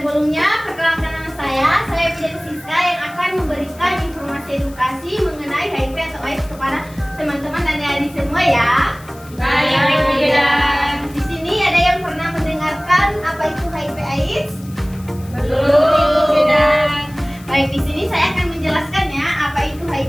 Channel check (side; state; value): left; noise; hiss, 23 dB below the sound